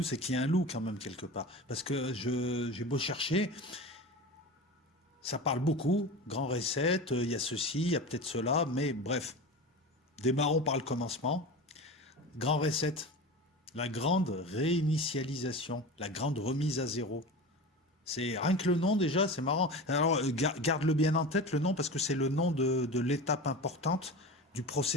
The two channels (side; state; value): both; normal; correlation 0.30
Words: c'est qu'il y a un loup quand même quelque part. Parce que j'ai beau chercher, ça parle beaucoup. Grand reset, il y a ceci, il y a peut-être cela, mais bref, démarrons par le commencement. Grand reset. La grande réinitialisation, la grande remise à zéro. C'est rien que le nom déjà, c'est marrant. Alors garde-le bien en tête le nom parce que c'est le nom de l'étape importante du